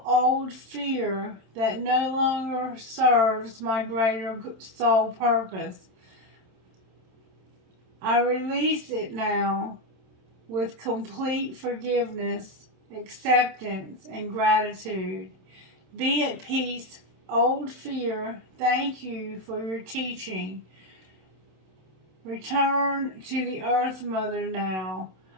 old fear that no longer serves my greater soul purpose. I release it now with complete forgiveness, acceptance, and gratitude. Be at peace, old fear. Thank you for your teaching. Return to the earth, Mother, now.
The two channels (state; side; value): late; left; 27 ms